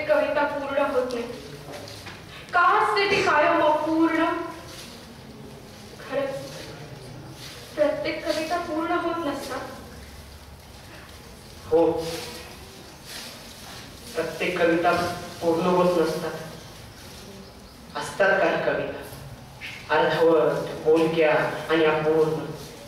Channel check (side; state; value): both; identical; correlation 1.00